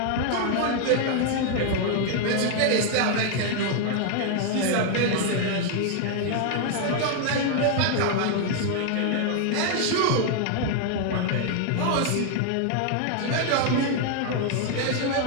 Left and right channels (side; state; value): both; different; correlation 0.00